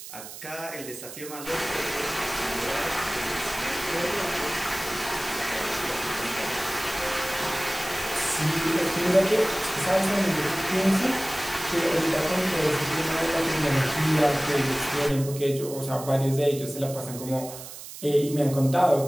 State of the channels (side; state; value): right; noise; hiss, 13 dB below the sound